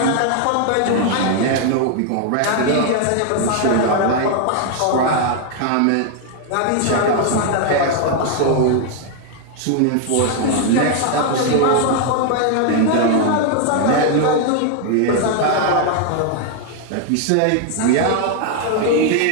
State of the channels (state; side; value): different; both; correlation 0.00